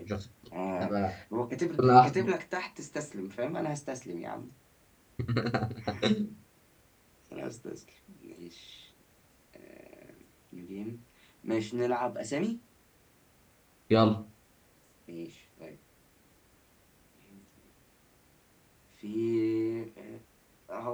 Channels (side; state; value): both; identical; correlation 1.00